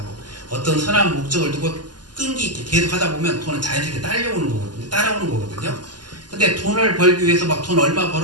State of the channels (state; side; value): late; left; 0.70 ms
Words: 어떤 선한 목적을 두고 끈기 있게 계속 하다 보면 돈은 자연스럽게 따라오는 거거든요. 근데 돈을 벌기 위해서 막 돈 얼마